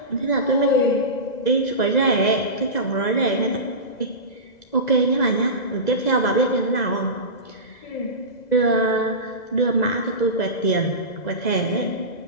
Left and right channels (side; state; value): right; late; 2.0 ms